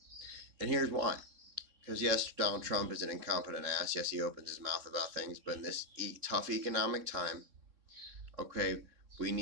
And here's why. Because yes, Donald Trump is an incompetent ass. Yes, he opens his mouth about things. But in this tough economic time, okay, we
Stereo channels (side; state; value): left; late; 3.6 ms